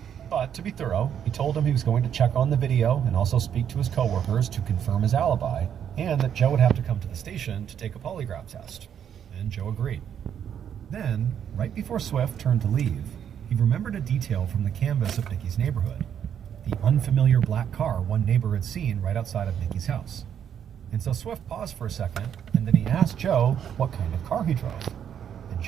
But to be thorough, he told him he was going to check on the video and also speak to his coworkers to confirm his alibi, and that Joe would have to come to the station to take a polygraph test. And Joe agreed. Then, right before Swift turned to leave, he remembered a detail from the canvas of Nikki's neighborhood. The unfamiliar black car one neighbor had seen right outside of Nikki's house. And so Swift paused for a second, and then he asked Joe what kind of car he drove. And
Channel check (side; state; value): left; quieter; 8.8 dB